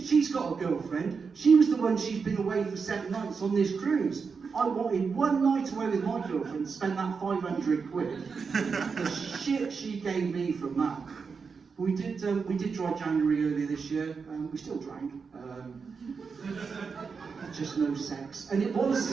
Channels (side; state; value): left; quieter; 5.3 dB